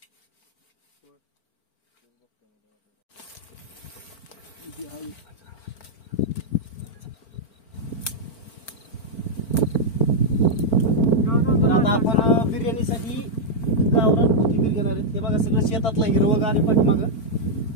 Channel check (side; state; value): right; late; 4.4 ms